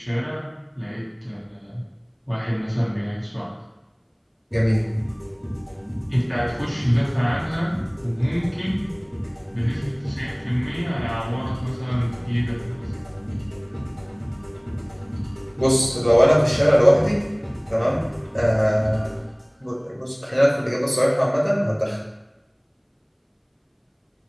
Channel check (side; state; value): both; identical; correlation 1.00